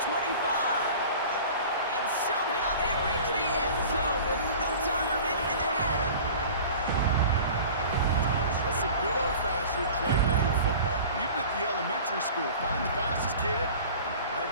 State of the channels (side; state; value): both; inverted; correlation -0.41